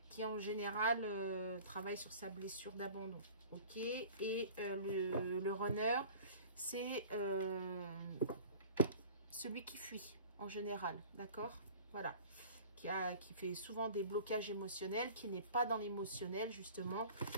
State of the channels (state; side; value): inverted; both; correlation -0.43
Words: Qui en général travaille sur sa blessure d'abandon, ok? Et le runner, c'est celui qui fuit en général, d'accord? Voilà. Qui fait souvent des blocages émotionnels, qui n'est pas dans l'émotionnel justement,